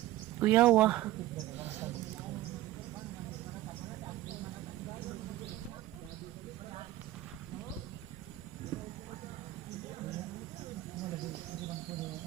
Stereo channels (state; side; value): quieter; left; 15.6 dB